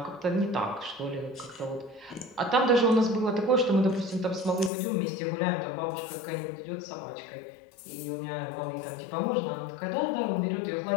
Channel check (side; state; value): right; drops out; at 4.7 s